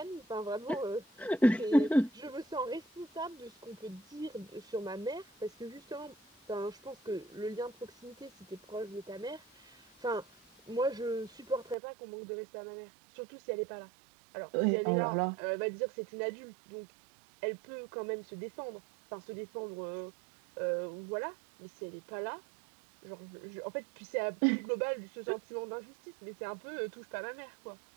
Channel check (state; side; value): drops out; left; at 11.8 s